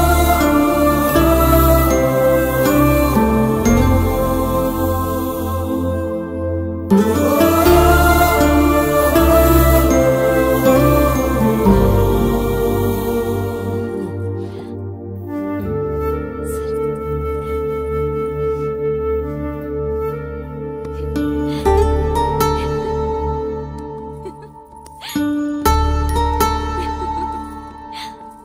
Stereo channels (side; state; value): both; identical; correlation 1.00